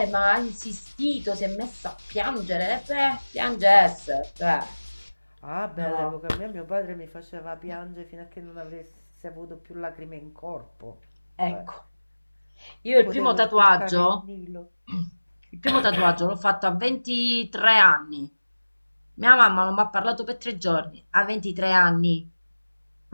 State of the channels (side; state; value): both; inverted; correlation -1.00